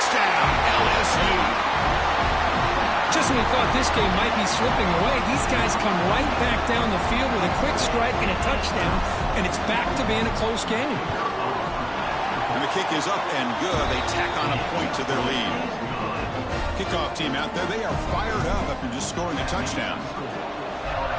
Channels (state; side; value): identical; both; correlation 1.00